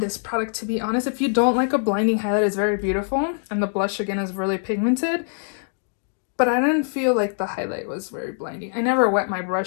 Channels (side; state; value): right; silent; digital silence